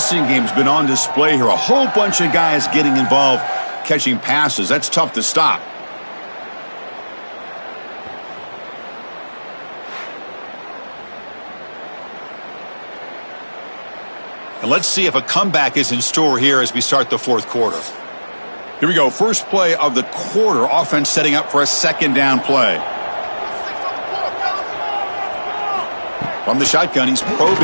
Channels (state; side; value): inverted; both; correlation -1.00